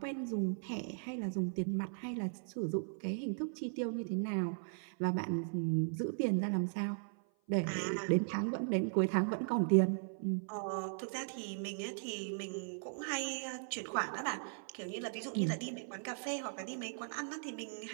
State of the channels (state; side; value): silent; left; 53 dB below the other